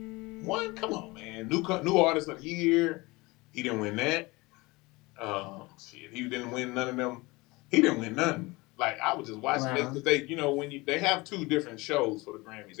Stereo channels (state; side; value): quieter; right; 23.3 dB